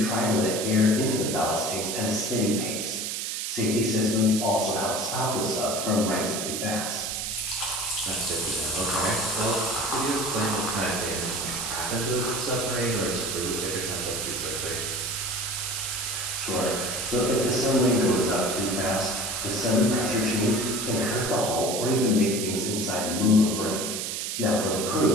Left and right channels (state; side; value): noise; right; hiss, 3 dB below the sound